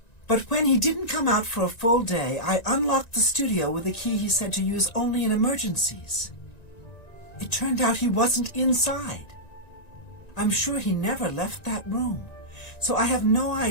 But when he didn't come out for a full day, I unlocked the studio with a key he said to use only in emergencies. It turned out he wasn't inside. I'm sure he never left that room, so I have no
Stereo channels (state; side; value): late; right; 1.9 ms